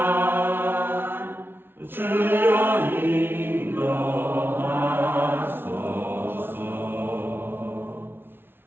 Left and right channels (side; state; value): left; late; 0.11 ms